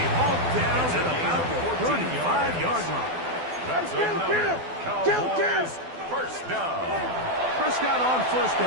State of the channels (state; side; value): late; left; 12 ms